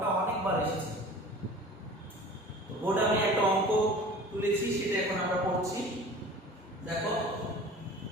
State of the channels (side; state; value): both; normal; correlation 0.42